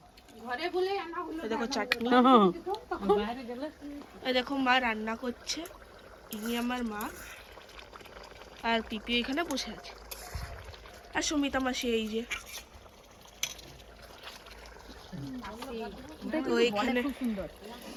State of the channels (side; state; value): both; identical; correlation 1.00